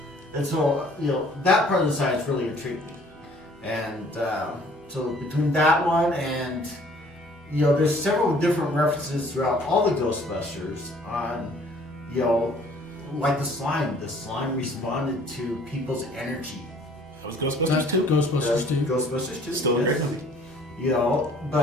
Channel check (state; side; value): normal; both; correlation 0.56